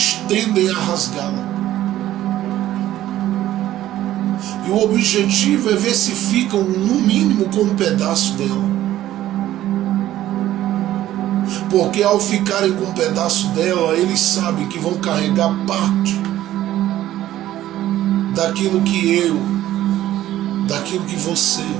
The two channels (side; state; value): left; quieter; 13.6 dB